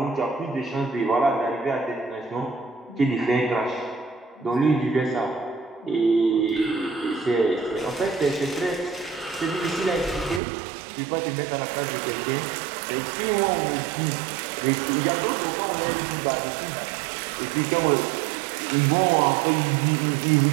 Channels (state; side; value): drops out; left; at 10.4 s